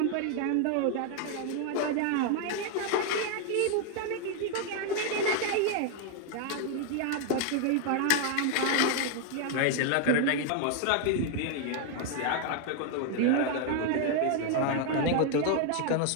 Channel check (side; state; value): both; different; correlation 0.00